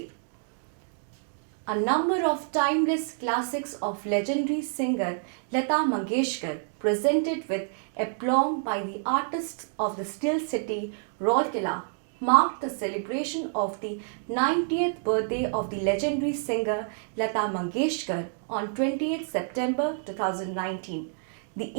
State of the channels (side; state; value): left; silent; digital silence